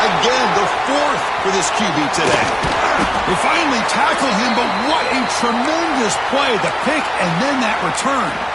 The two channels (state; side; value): noise; right; hum, 27 dB below the sound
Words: again, the 4th for this QB today. They finally tackle him, but what a tremendous play. The pick and then that return.